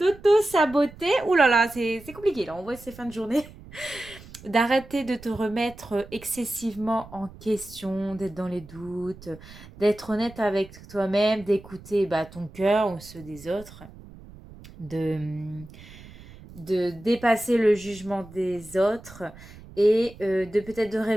Ouh là là, c'est compliqué là, on voit ces fins de journée. D'arrêter de te remettre excessivement en question, d'être dans les doutes, d'être honnête avec toi-même, d'écouter ton cœur ou ceux des autres, de, de dépasser le jugement des autres et de peut-être de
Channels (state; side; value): noise; right; rumble, 19 dB below the sound